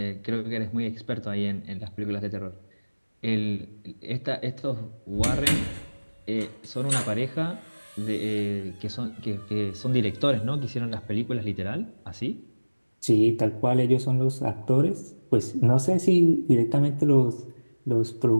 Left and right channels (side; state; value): both; inverted; correlation -1.00